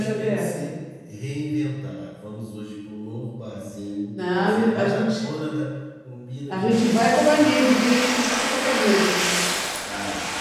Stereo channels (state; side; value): identical; both; correlation 1.00